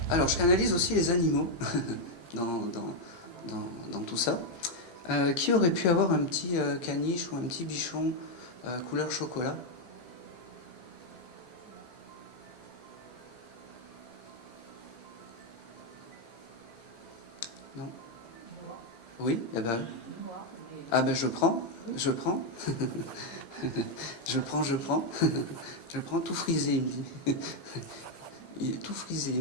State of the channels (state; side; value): late; right; 18 ms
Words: Alors, je canalise aussi les animaux dans tout ça. Qui aurait pu avoir un petit caniche ou un petit bichon couleur chocolat? Non? Oui? Eh ben, ah ben je prends. Je prends. Je prends tout frisé, il me dit. Il est tout frisé,